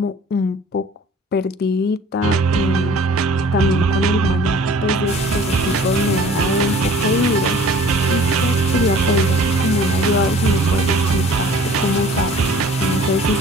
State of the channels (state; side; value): normal; both; correlation 0.49